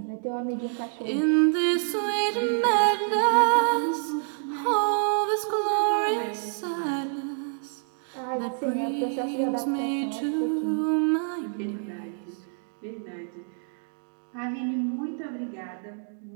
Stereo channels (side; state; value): left; silent; digital silence